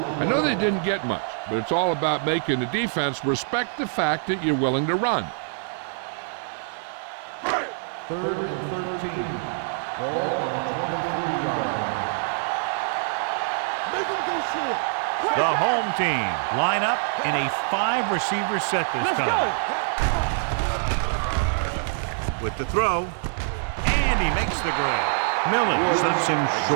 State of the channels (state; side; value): silent; left; digital silence